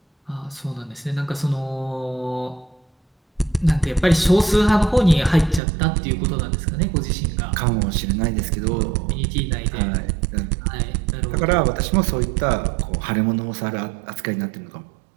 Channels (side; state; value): left; drops out; at 5.6 s